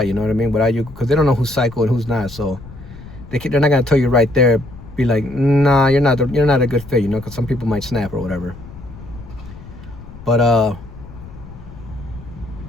You know what I mean? Without you, because they don't know who's psycho and who's not. So they're not gonna tell you right there. Be like, "Nah, you're not a good fit." Because some people might snap or whatever. But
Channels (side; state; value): left; noise; rumble, 16 dB below the sound